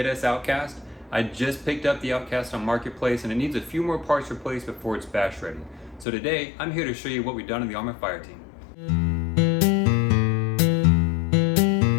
Outcast. I just picked up the Outcast on Marketplace and it needs a few more parts replaced before it's bash ready. So today, I'm here to show you what we've done in the Arrma FireTeam.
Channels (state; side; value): drops out; right; at 6.1 s